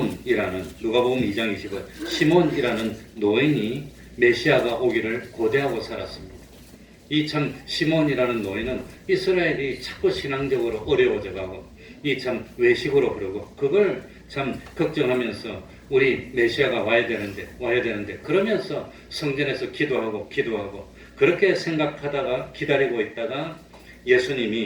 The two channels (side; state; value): both; identical; correlation 1.00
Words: 누가복음 2장 20절, 시몬이라는 노인이 메시아가 오기를 고대하고 살았습니다. 이 시몬이라는 노인은 이스라엘이 자꾸 신앙적으로 어려워져가고 외식으로 그러고 그걸 걱정하면서 우리 메시아가 와야 되는데 그러면서 성전에서 기도하고 그렇게 생각하다가 기다리고 있다가